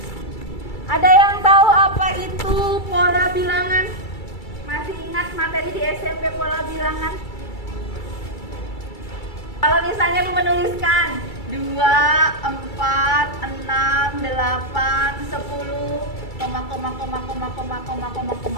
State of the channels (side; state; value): right; late; 2.3 ms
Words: Ada yang tahu apa itu pola bilangan? Masih ingat materi di SMP pola bilangan? Kalau misalnya lu menuliskan 2, 4, 6, 8, 10,